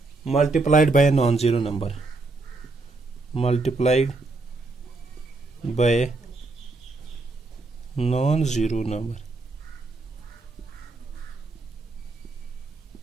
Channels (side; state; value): left; quieter; 3.5 dB